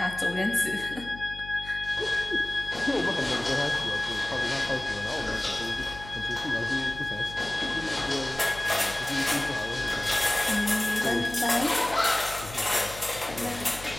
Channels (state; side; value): noise; left; hum, 15 dB below the sound